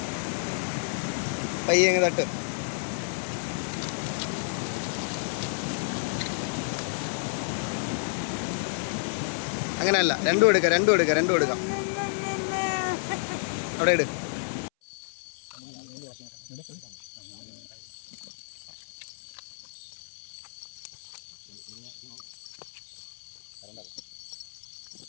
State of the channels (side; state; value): right; silent; 58 dB below the other